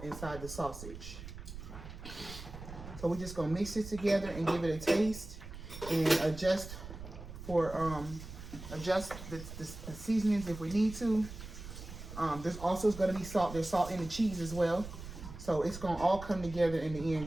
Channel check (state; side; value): noise; right; rumble, 12 dB below the sound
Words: inside the sausage. So we're just gonna mix it together and give it a taste and adjust the seasonings if we need to. There's also going to be salt. There's salt in the cheese as well. So it's going to all come together in the end.